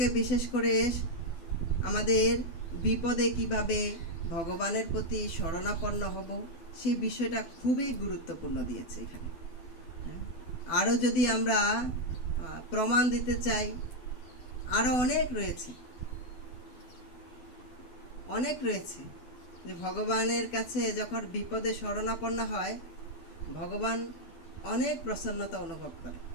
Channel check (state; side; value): late; right; 12 ms